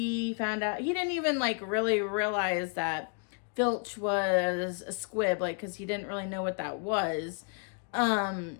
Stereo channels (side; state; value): right; quieter; 38.2 dB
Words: found out, he didn't even really realize that Filch was a squib, because he didn't really know what that was.